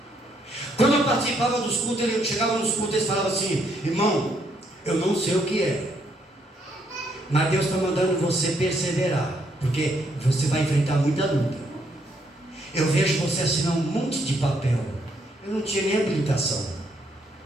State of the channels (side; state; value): both; normal; correlation 0.72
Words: Quando eu participava dos cultos, eu chegava nos cultos e eles falavam assim: irmão, eu não sei o que é, mas Deus está mandando você perseverar, porque você vai enfrentar muita luta. Eu vejo você assinar um monte de papel. Eu não tinha nem habilitação.